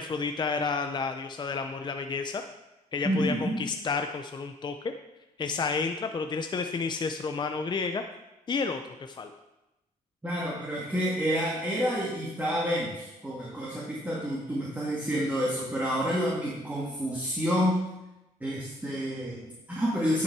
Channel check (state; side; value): normal; both; correlation 0.60